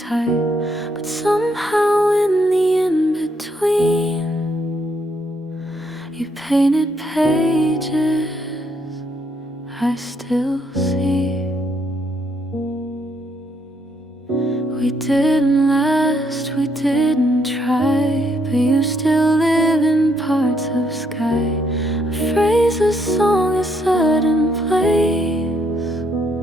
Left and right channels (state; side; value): normal; both; correlation 0.73